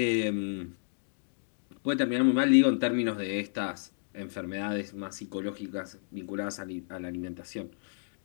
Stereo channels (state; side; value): silent; right; digital silence